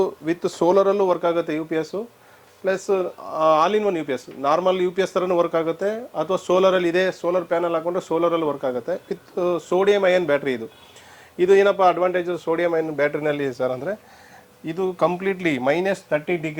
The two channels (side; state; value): both; identical; correlation 1.00